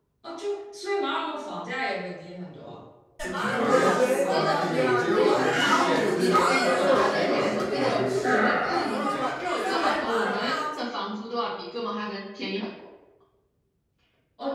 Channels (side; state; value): both; identical; correlation 1.00